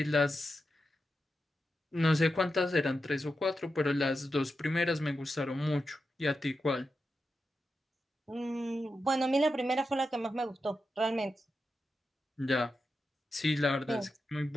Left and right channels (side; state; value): both; normal; correlation 0.89